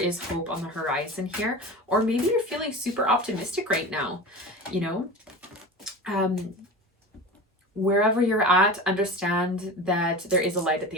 hope on the horizon here. Or maybe you're feeling super optimistic right now. Wherever you're at, understand that there is a light at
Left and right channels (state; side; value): normal; both; correlation 0.31